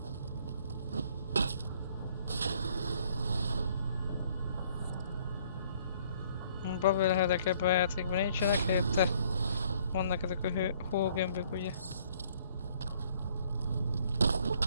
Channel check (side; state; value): both; inverted; correlation -0.62